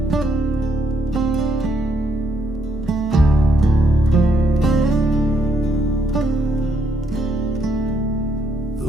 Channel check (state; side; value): normal; both; correlation 0.73